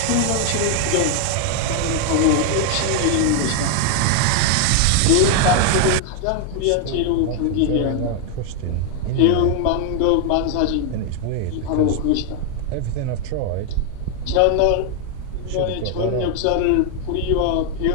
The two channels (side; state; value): both; different; correlation 0.00